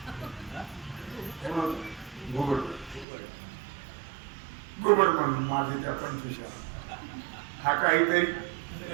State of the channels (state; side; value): drops out; left; at 3.1 s